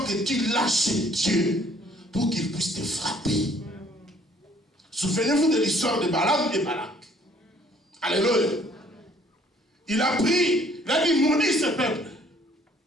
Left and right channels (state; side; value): normal; both; correlation 0.60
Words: que tu lâches Dieu pour qu'il puisse te frapper. Souvenez-vous de l'histoire de Balaam et Balak. Alléluia. Il a pris, il a dit, maudis ce peuple.